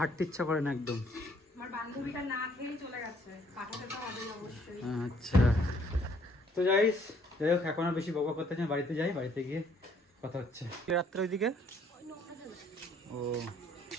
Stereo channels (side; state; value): both; normal; correlation 0.63